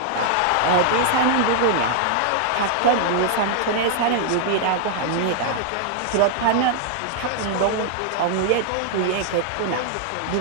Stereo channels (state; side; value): different; both; correlation -0.01